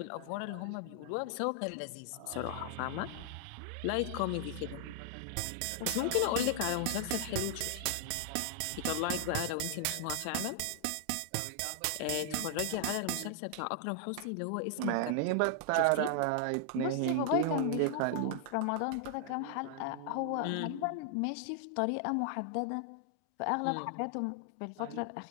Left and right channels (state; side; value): different; both; correlation 0.00